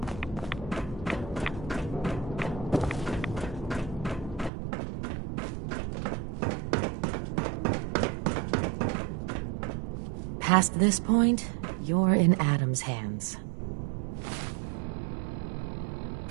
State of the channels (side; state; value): left; drops out; at 4.5 s